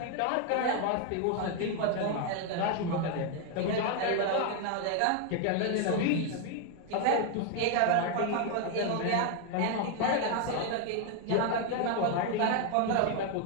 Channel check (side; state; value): both; different; correlation 0.01